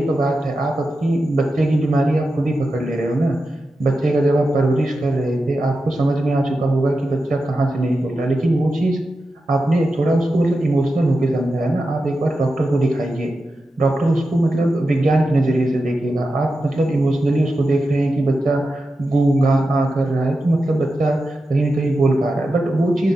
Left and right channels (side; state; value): both; normal; correlation 0.90